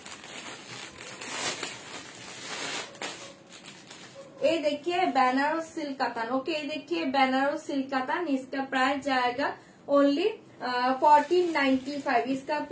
ये देखिए बनारस सिल्क कातान। ओके ये देखिए बनारस सिल्क कातान, इसका प्राइस जाएगा ओनली 1495, इसका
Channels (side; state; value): both; identical; correlation 1.00